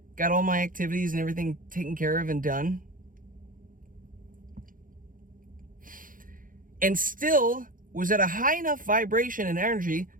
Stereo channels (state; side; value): late; left; 0.40 ms